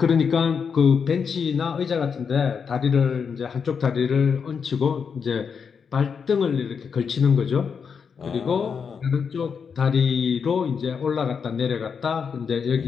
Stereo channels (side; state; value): right; quieter; 6.3 dB